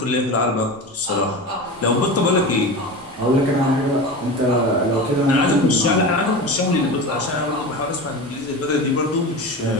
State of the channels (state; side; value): normal; both; correlation 0.28